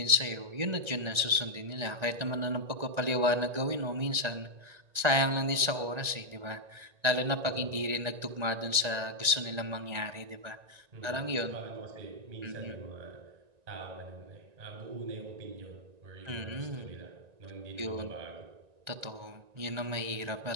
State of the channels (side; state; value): left; late; 1.9 ms